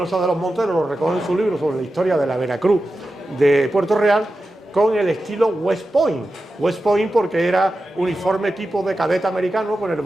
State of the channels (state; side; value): normal; both; correlation 0.92